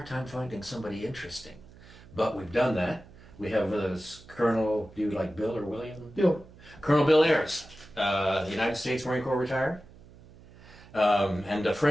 time finding somebody interesting. But we've done that. We have with us Colonel, do you like Bill or William? Bill. Colonel Bill Ayers, United States Marine Corps retired, and a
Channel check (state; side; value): noise; right; hum, 22 dB below the sound